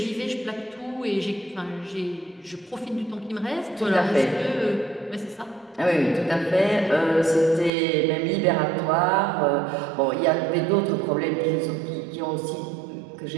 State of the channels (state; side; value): drops out; left; at 7.7 s